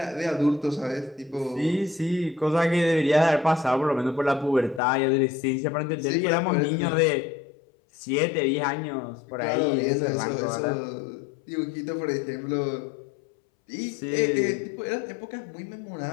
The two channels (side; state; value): right; drops out; at 4.8 s